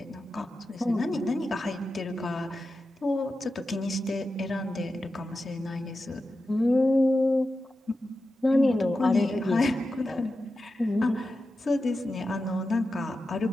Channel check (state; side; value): normal; both; correlation 0.91